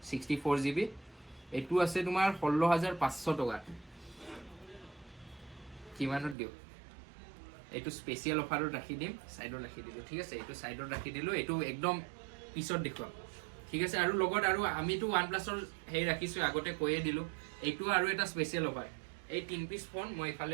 64GB এইটো আছে তোমাৰ 16,500 টকা কিমানত দিওঁ এইটো স্পেচিয়েল অফাৰত ৰাখি দিম সাইডত ৰাখি দিলোঁ ঠিক আছে এইটো সাইডত ৰাখি দিলোঁ এইটো একদম পিছত দেখুৱাম ঠিক আছে আৰু লগত আৰু আমিতো OnePlusৰ হেৰি ৰাখিছোঁ আগতে কৈয়ে দিলোঁ এইটো আৰু এটা স্পেচিয়েল অফাৰ এই 3 পিচ ফোন মই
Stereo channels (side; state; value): left; drops out; at 6.4 s